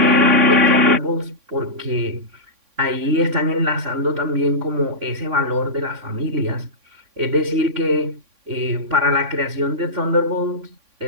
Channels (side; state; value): left; late; 3.5 ms